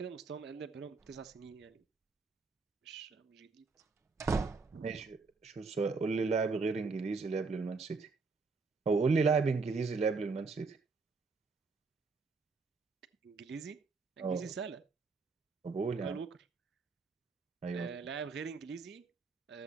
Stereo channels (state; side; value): quieter; left; 4.3 dB